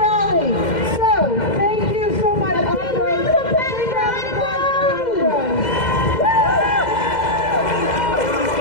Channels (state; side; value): late; right; 2.0 ms